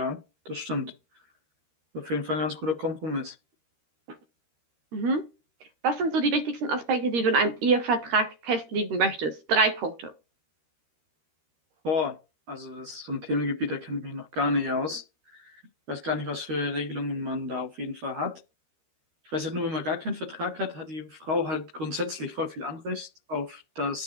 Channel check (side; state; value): left; late; 13 ms